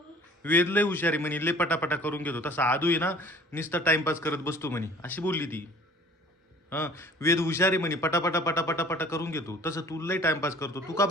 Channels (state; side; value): normal; both; correlation 0.49